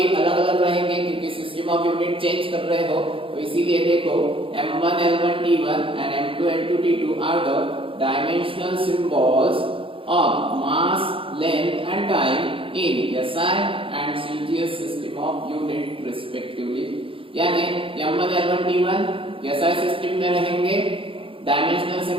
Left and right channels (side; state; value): left; late; 0.26 ms